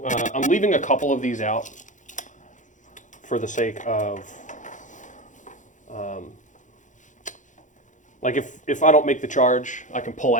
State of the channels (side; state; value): right; late; 0.36 ms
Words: I'm leaving a couple of these out for the sake of, like if I don't make the charge, I can pull